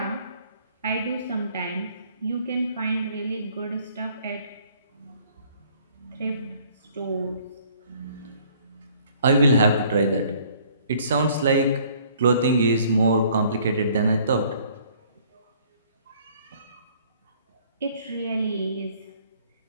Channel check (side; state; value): both; inverted; correlation -0.59